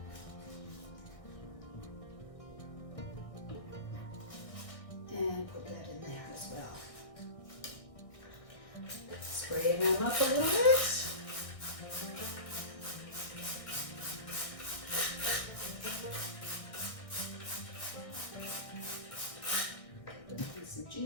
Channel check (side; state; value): right; late; 1.6 ms